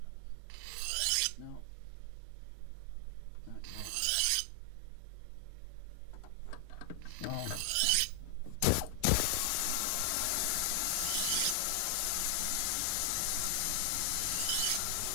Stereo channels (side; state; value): both; different; correlation 0.00